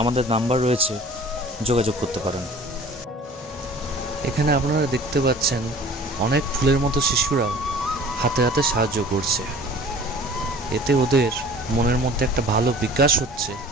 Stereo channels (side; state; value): both; normal; correlation 0.46